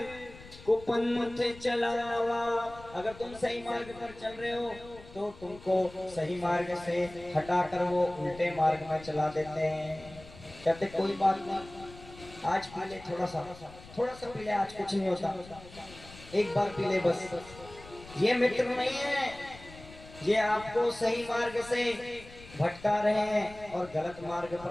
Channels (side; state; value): left; noise; rumble, 19 dB below the sound